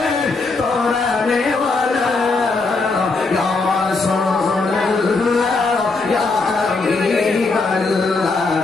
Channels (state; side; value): quieter; right; 3.8 dB